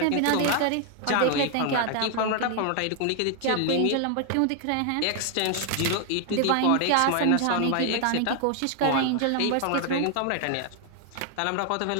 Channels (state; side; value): different; both; correlation 0.00